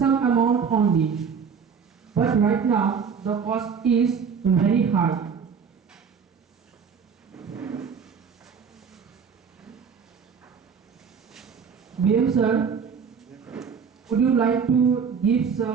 amount only. But right now, the cost is very high. BM sir, would you like to give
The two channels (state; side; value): quieter; left; 6.4 dB